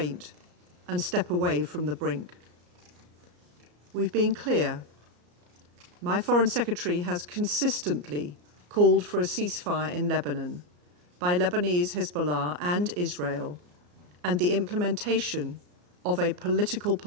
and step away from the brink. We've been clear. My Foreign Secretary has consistently called for a ceasefire in Lebanon by Lebanese Hezbollah and Israel, and the implementation of a political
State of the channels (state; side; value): late; left; 34 ms